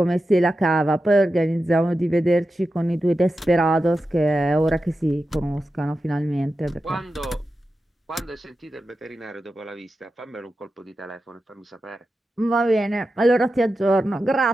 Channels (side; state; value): both; normal; correlation 0.91